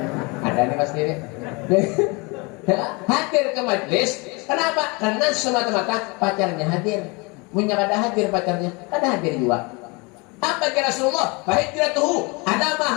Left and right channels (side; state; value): right; quieter; 28.2 dB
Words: Ada nih pasti nih. Hadir ke majlis. Kenapa? Karena semata-mata pacarnya hadir. Punya kada hadir pacarnya, kada hadir juga. Apa kata Rasulullah? Fahijratuhu